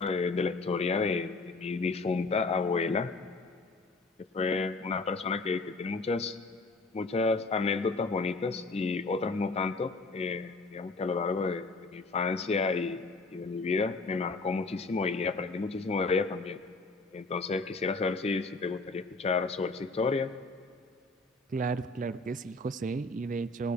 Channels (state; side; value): quieter; right; 3.4 dB